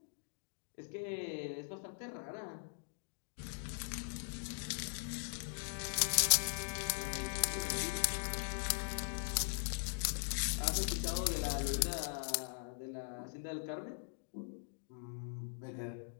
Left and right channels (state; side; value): silent; right; digital silence